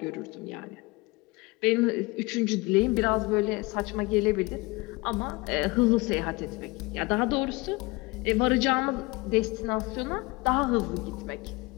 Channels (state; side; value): quieter; right; 24.2 dB